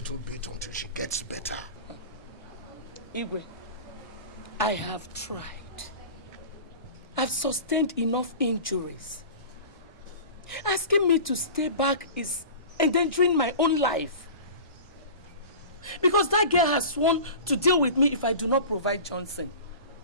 bit until she gets better. Igwe, I have tried. I've sustained enough injuries. Asking me to stay back is endangering my own life. Because that girl has sworn to deal with me if I do not provide Johnson.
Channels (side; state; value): both; inverted; correlation -0.37